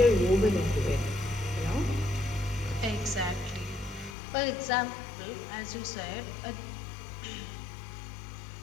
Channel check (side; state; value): right; drops out; at 4.2 s